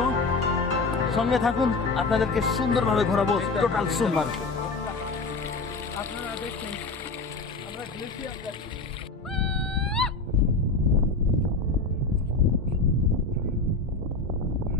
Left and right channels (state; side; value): quieter; right; 3.6 dB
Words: সঙ্গে থাকুন, আপনাদেরকে সুন্দরভাবে ঘোরাবো টোটাল সোনমার্গ। আপনারা দেখছেন আমরা গ্লেশিয়ার যাচ্ছি।